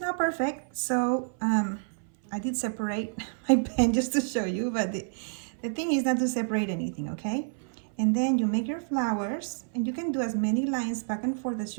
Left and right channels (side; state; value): left; silent; 58 dB below the other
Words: not perfect, so I did separate my pen just to show you, but the thing is not to separate anything, okay? And then you make your flowers, and you can do as many lines back and forth as